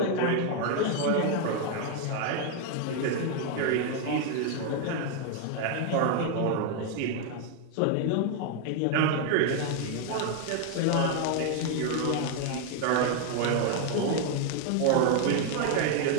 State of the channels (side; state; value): both; different; correlation 0.00